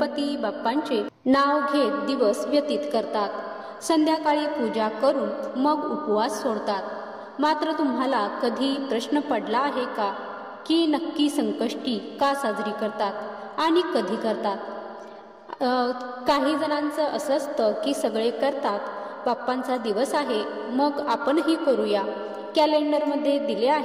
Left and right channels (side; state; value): both; identical; correlation 1.00